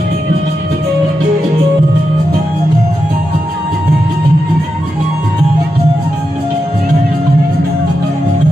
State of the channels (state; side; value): normal; both; correlation 0.87